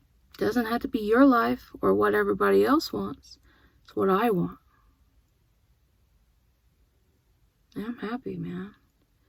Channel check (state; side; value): identical; both; correlation 1.00